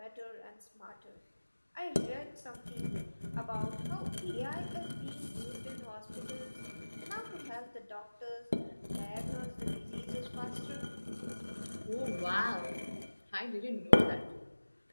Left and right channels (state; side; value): inverted; both; correlation -1.00